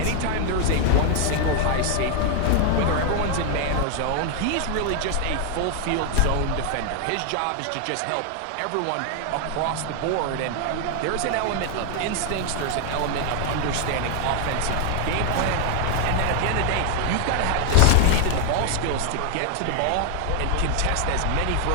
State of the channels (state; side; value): different; both; correlation 0.00